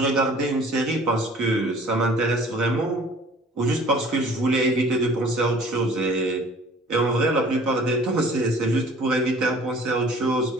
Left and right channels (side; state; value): both; normal; correlation 0.50